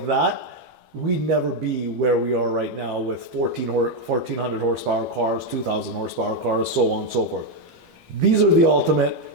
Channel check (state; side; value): late; left; 12 ms